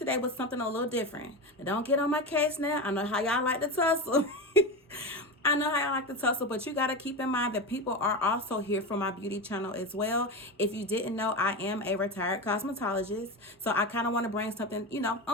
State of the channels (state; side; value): normal; both; correlation 0.20